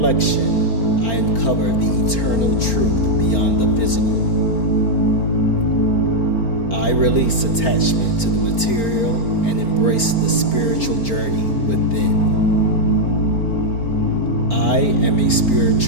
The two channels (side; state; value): right; late; 4.4 ms